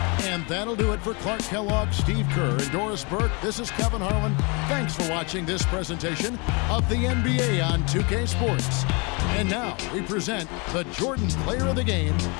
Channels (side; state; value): right; quieter; 30.7 dB